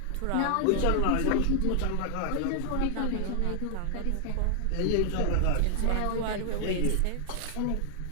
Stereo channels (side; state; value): both; different; correlation 0.00